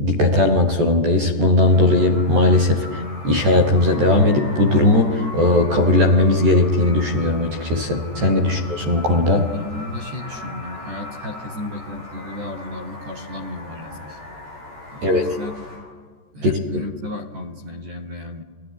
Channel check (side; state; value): left; late; 14 ms